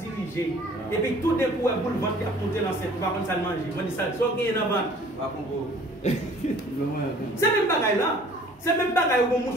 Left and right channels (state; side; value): normal; both; correlation 0.52